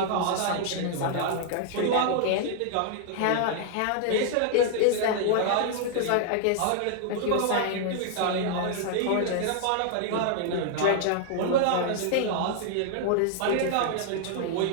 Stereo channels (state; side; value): different; both; correlation 0.00